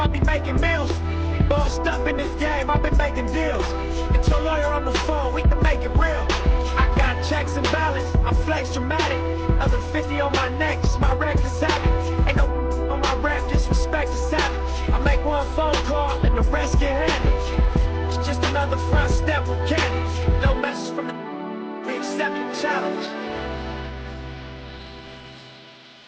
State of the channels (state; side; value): identical; both; correlation 1.00